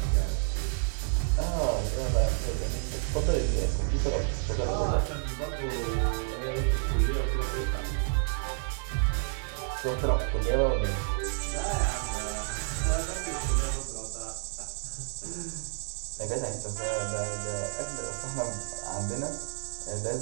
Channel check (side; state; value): left; silent; digital silence